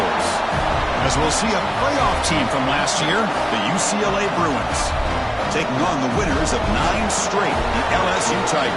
As we'll see a playoff team from last year, the UCLA Bruins, taking on the winners of 9 straight, the LSU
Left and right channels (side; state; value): both; identical; correlation 1.00